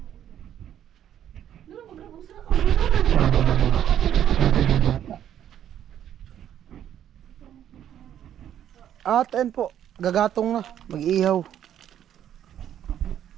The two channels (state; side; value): quieter; left; 10.4 dB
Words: At ayun po, gagatong na, mag-ihaw.